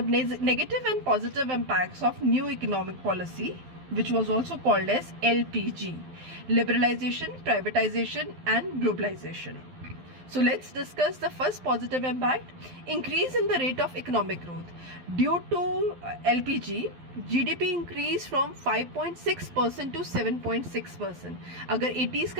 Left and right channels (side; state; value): left; late; 12 ms